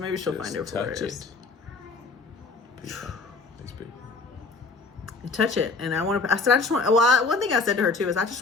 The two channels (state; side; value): quieter; right; 4.1 dB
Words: she'll find out where it is. These people. Touch it. And one thing I said to her too is I just